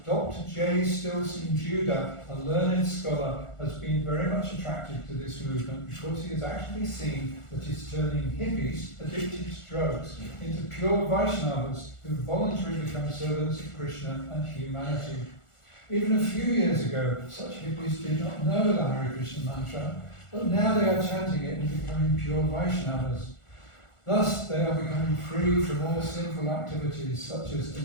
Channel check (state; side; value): late; right; 1.4 ms